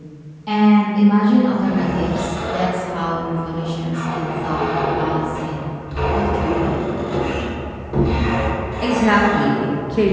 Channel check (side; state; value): both; identical; correlation 1.00